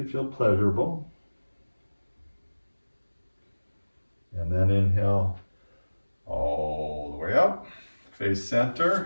feel pleasurable. And then inhale all the way up. Face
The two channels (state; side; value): inverted; both; correlation -1.00